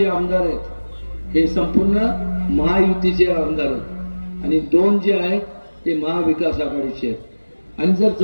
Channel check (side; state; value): both; inverted; correlation -1.00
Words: आमदार आहेत हे संपूर्ण महायुतीचे आमदार आहेत आणि 2 जे आहेत ते महाविकास आघाडीचे आहेत. आणि जर